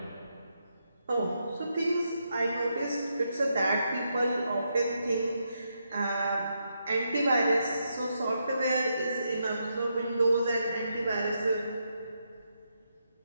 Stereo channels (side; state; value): both; inverted; correlation -0.81